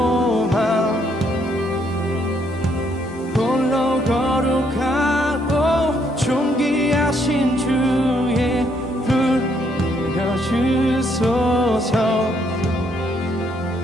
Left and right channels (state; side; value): normal; both; correlation 0.71